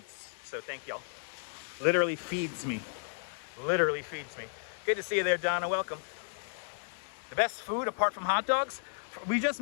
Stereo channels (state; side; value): silent; right; digital silence